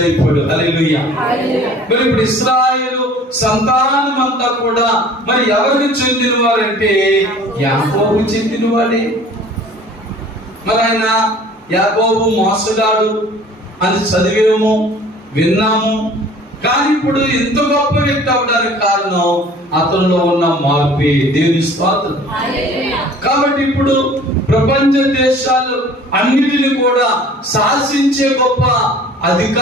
హల్లెలూయా. మరి ఇప్పుడు ఇశ్రాయేలు సంతానం అంతా కూడా మరి ఎవరికి చెందిన వారంటే యాకోబు చెందిన వాడే. మరి ఆయన యాకోబు మోసగాడు అని చదివేమో, విన్నాము. కానీ ఇప్పుడు ఇంత గొప్ప వ్యక్తి అవడానికి కారణం అతనిలో ఉన్న మార్పే. దేవుని స్తోత్రం. కాబట్టి ఇప్పుడు ప్రపంచ దేశాలు అన్నిటిని కూడా శాసించే గొప్ప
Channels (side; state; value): both; normal; correlation 0.49